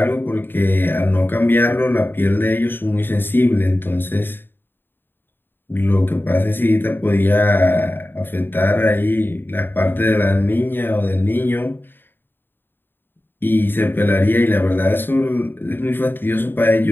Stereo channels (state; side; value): late; right; 0.097 ms